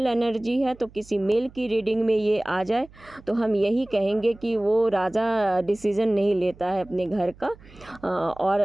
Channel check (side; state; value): right; noise; hum, 23 dB below the sound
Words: एनर्जी है। तो किसी मेल की रीडिंग में ये आ जाए तो हम यही कहेंगे कि वो राजा डिसीज़न नहीं लेता है अपने घर का, और